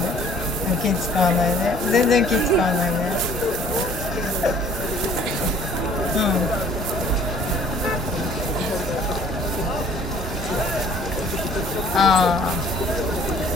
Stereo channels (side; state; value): both; normal; correlation 0.54